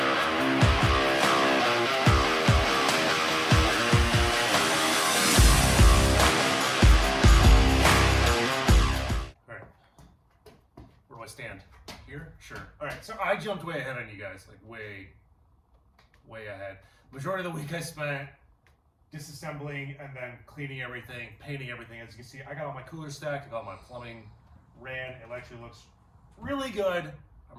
I stand here? Sure. All right, so I jumped way ahead on you guys, like way ahead. Majority of the week I spent disassembling and then cleaning everything, painting everything. As you can see, I got all my coolers stacked, I got all my plumbing ran. It actually looks really good.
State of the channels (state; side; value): identical; both; correlation 1.00